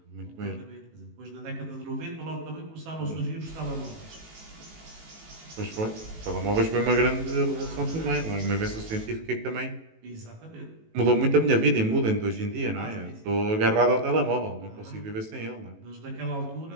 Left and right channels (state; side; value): late; left; 18 ms